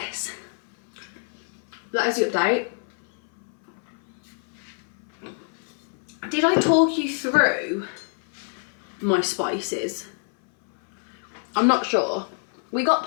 that is the update. Did I talk you through my spices? I'm not sure. We got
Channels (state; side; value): silent; right; 58 dB below the other